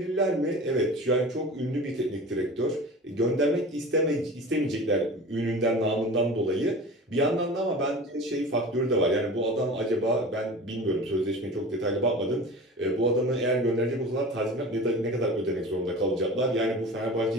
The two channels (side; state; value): both; normal; correlation 0.36